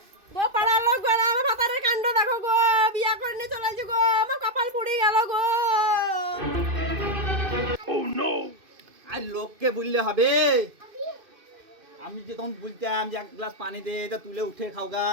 গো পাড়ার লোক গো আমার ভাতারের কাণ্ড দেখো গো, বিয়া করে নিয়ে চলে আসো গো, আমার কপাল পুড়ে গেল গো। আর লোককে বললে হবে? আমি যে তখন বলতাম যে এক গ্লাস পানি দে, তা তুলে উঠে খাওগা,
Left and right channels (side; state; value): left; late; 2.5 ms